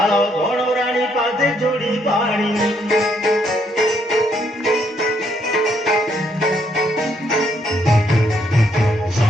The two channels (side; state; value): both; normal; correlation 0.72